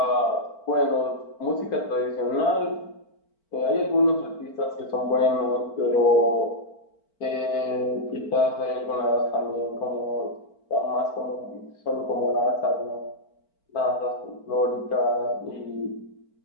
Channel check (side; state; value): right; late; 4.5 ms